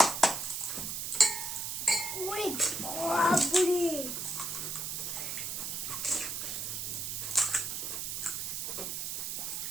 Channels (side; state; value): right; noise; hiss, 3 dB below the sound